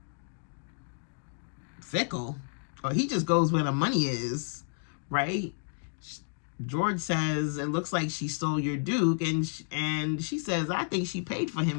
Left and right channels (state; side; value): silent; right; digital silence